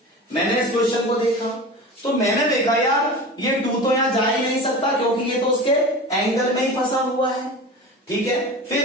मैंने इस क्वेश्चन को देखा तो मैंने देखा यार ये 2 तो यहां जा ही नहीं सकता क्योंकि ये तो उसके एंगल में ही फंसा हुआ है, ठीक है।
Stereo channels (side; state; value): both; normal; correlation 0.32